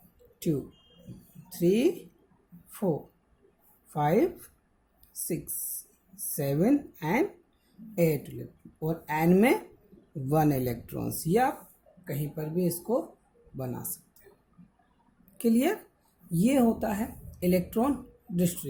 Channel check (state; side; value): identical; both; correlation 1.00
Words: 2 3 4 5 6 7 एंड 8 इलेक्ट्रॉन। और एन में 1 इलेक्ट्रॉन्स। ये आप कहीं पर भी इसको बना सकते हो। क्लियर? ये होता है इलेक्ट्रॉन